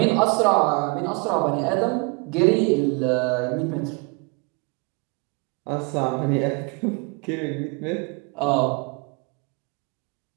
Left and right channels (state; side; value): quieter; left; 29.8 dB